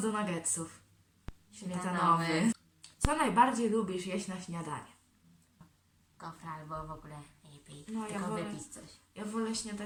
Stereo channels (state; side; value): identical; both; correlation 1.00